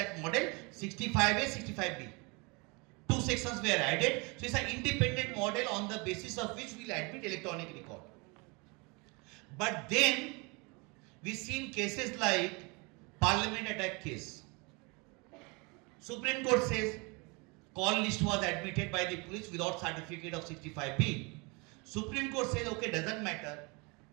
model? 65A, 65B. Two sections were added. So it's an independent model on the basis of which we will admit electronic record. But then we've seen cases like Parliament attack case. Supreme Court says call list was admitted by the police without certificate of 65B. Supreme Court says, okay, doesn't matter.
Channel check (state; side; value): quieter; left; 29.2 dB